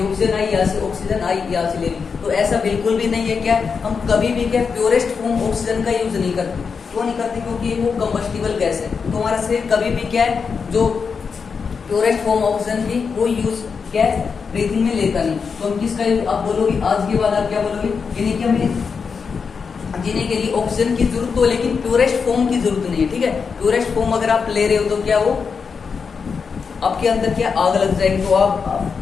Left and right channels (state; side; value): quieter; right; 5.6 dB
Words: ऑक्सीजन आई यहाँ से, ऑक्सीजन आई यहाँ से ले ली, तो ऐसा बिल्कुल भी नहीं है। क्या हम कभी भी क्या प्योरेस्ट फॉर्म ऑक्सीजन का यूज नहीं करते, क्यों नहीं करते, क्योंकि वो कंबस्टिबल गैस है, तो हमारा शरीर कभी भी क्या है जो प्योरेस्ट फॉर्म ऑक्सीजन की वो यूज क्या है ब्रीथिंग में लेता नहीं। तो हम किसका यूज, आप बोलोगे आज के बाद आप क्या बोलोगे, यानी कि हमें जीने के लिए ऑक्सीजन की जरूरत हो, लेकिन प्योरेस्ट फॉर्म की जरूरत नहीं है, ठीक है। प्योरेस्ट फॉर्म अगर आप ले रहे हो तो क्या वो आपके अंदर क्या आग लग जाएगी, तो आप